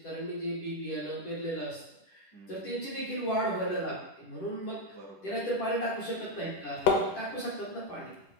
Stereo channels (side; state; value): right; late; 10 ms